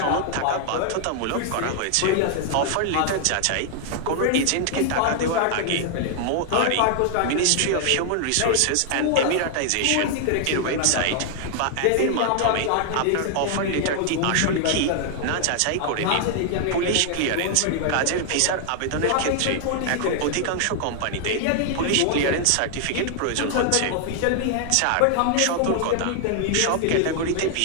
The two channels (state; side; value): different; both; correlation 0.00